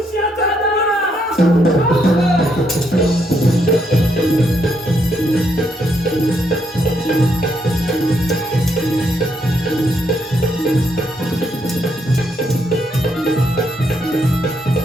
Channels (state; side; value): normal; both; correlation 0.76